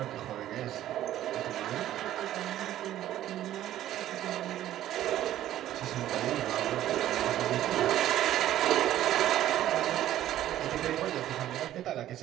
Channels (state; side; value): quieter; left; 12.8 dB